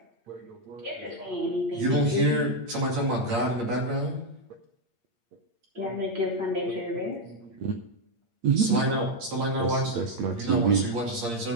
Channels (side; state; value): left; late; 8.6 ms